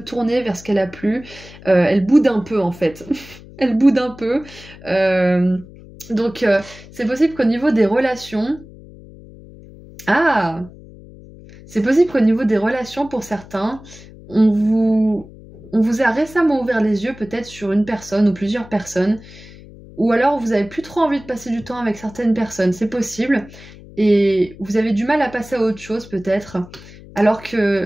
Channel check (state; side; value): noise; left; hum, 19 dB below the sound